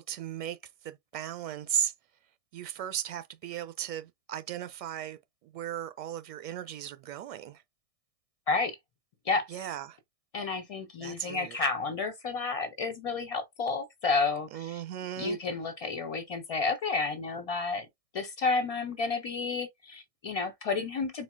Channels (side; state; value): right; late; 1.6 ms